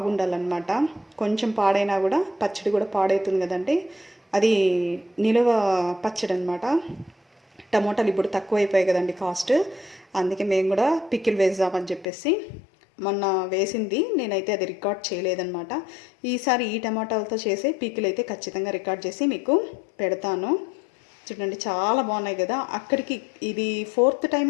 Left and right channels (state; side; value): drops out; right; at 12.1 s